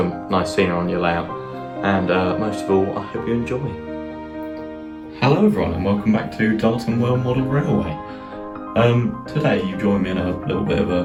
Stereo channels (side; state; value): both; identical; correlation 1.00